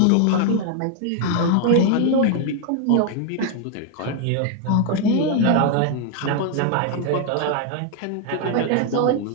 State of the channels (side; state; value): both; different; correlation 0.00